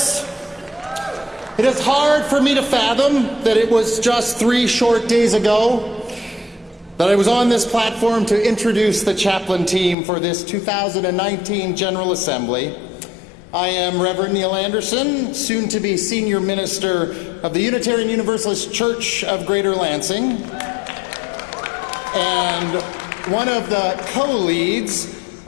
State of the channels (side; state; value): right; drops out; at 10.0 s